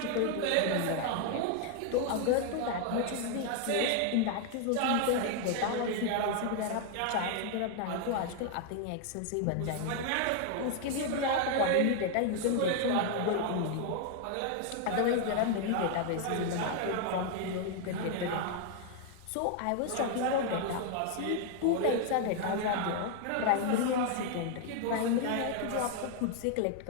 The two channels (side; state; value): both; different; correlation 0.00